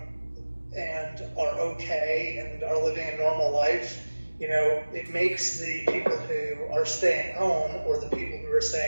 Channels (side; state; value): both; inverted; correlation -1.00